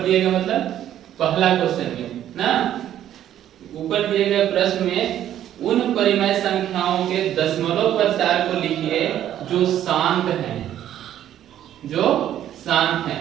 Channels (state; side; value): quieter; left; 11.4 dB